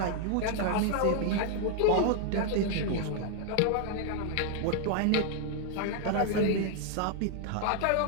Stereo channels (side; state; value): both; different; correlation 0.00